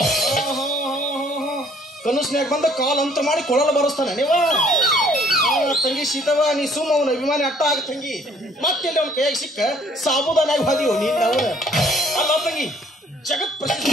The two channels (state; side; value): normal; both; correlation 0.60